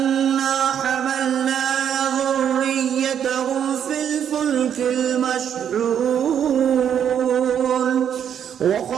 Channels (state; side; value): quieter; left; 8.8 dB